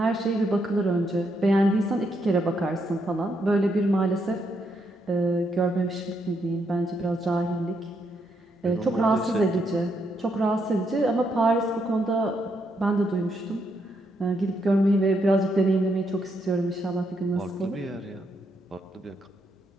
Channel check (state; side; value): normal; both; correlation 0.78